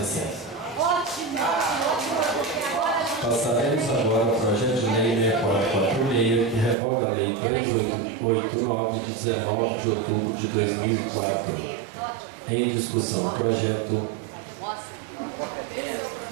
Passaremos agora ao projeto de lei 6446, que revoga a lei 3889, de 19 de outubro de 2004. Em discussão, o projeto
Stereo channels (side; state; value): left; drops out; at 6.8 s